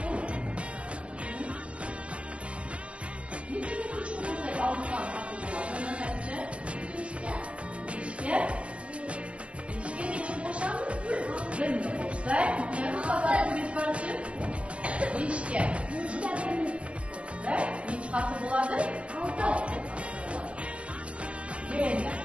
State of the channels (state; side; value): late; left; 0.060 ms